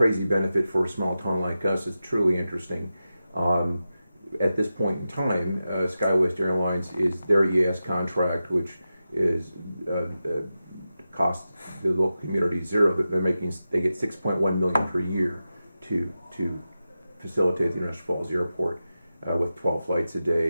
benefit for a small town like us is truly interesting. At this point in time, SkyWest Airlines is their EAS contract, which is cost the local community zero. That they get 6.1 million per year to facilitate the International Falls Airport with 12 flights a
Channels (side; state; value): both; inverted; correlation -0.92